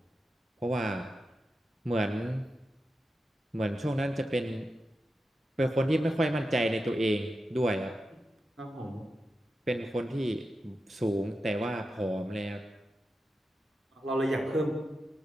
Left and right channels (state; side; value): normal; both; correlation 0.90